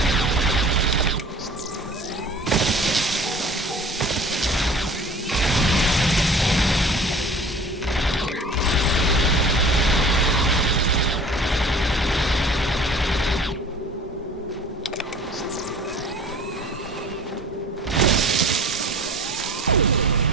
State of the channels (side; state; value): both; normal; correlation 0.44